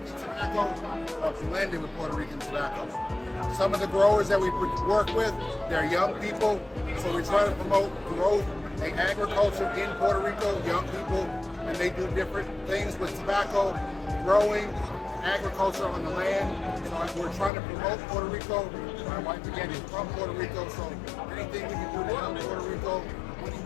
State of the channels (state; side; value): drops out; right; at 17.5 s